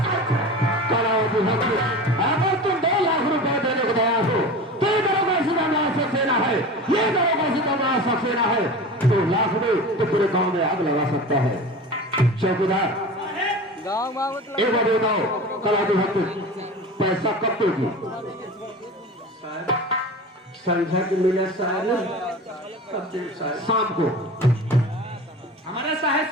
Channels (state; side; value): normal; both; correlation 0.33